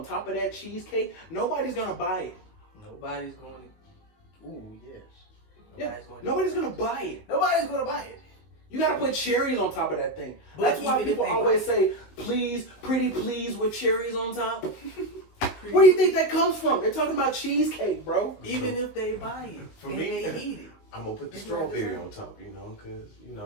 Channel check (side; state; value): right; late; 19 ms